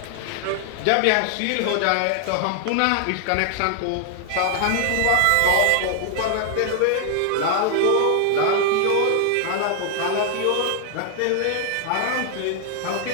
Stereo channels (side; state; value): both; different; correlation 0.00